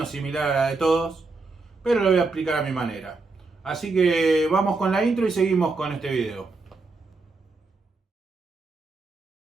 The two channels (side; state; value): left; quieter; 3.8 dB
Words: similar a la de todos, pero lo voy a explicar a mi manera. Así que vamos con la intro y seguimos con este video.